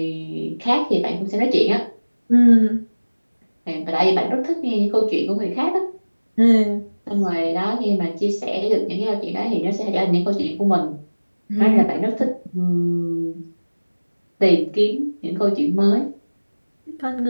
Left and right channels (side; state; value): both; inverted; correlation -1.00